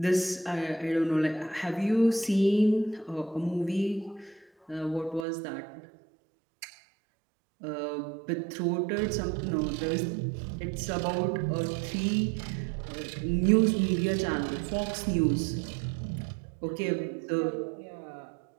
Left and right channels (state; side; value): drops out; left; at 5.2 s